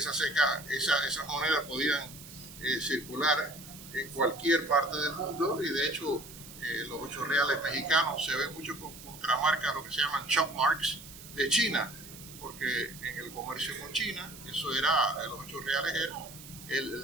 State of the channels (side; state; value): right; noise; hiss, 16 dB below the sound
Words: monedas podían circular en cualquier parte del mundo y de hecho los 8 reales mexicanos se ven mucho con contramarcas, lo que se llaman chop marks de China, porque en el comercio con China los 8 reales era